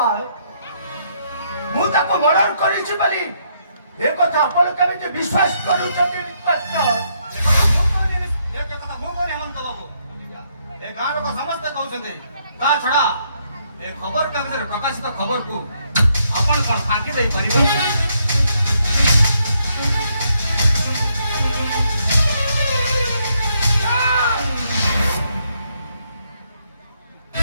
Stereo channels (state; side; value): inverted; both; correlation -0.74